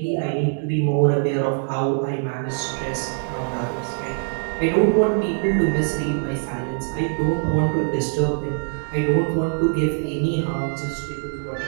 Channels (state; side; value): silent; left; 57 dB below the other